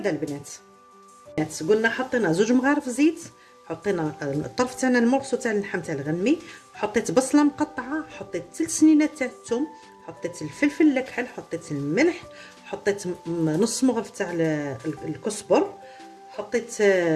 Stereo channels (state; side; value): identical; both; correlation 1.00